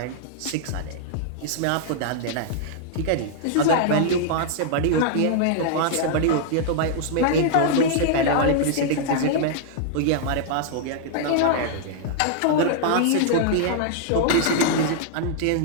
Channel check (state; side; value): different; both; correlation -0.01